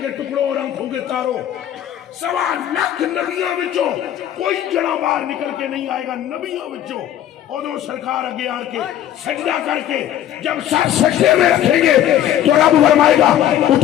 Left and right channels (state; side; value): quieter; right; 11.4 dB